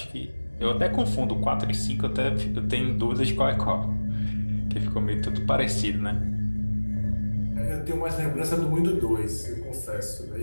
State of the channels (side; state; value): both; inverted; correlation -1.00